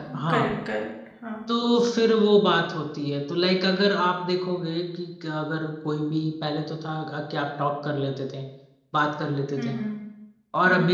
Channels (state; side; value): identical; both; correlation 1.00